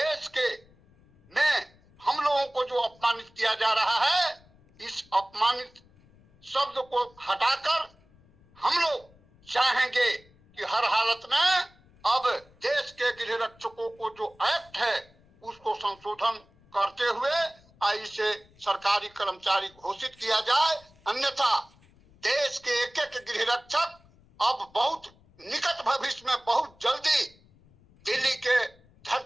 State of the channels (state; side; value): noise; left; rumble, 29 dB below the sound